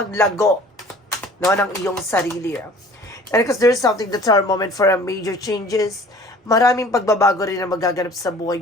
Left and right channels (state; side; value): normal; both; correlation 0.48